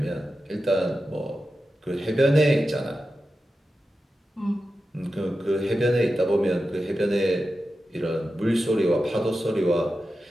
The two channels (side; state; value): both; normal; correlation 0.92